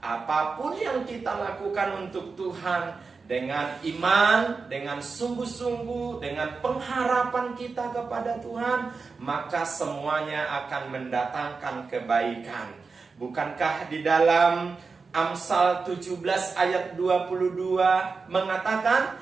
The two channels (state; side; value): quieter; left; 4.6 dB